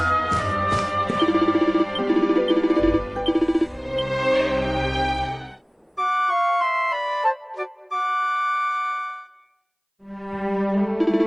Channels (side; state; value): both; identical; correlation 1.00